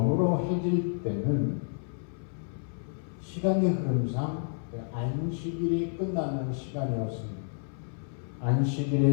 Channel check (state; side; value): silent; right; 58 dB below the other